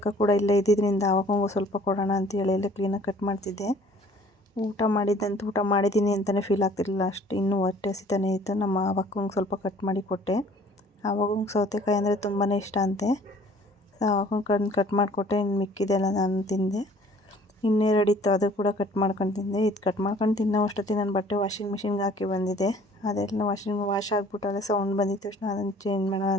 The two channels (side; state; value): both; normal; correlation 0.54